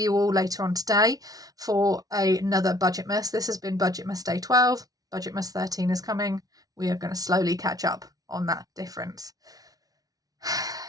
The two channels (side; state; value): left; late; 0.18 ms